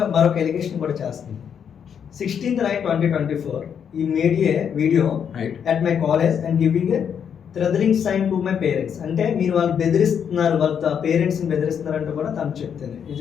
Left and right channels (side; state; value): right; quieter; 7.8 dB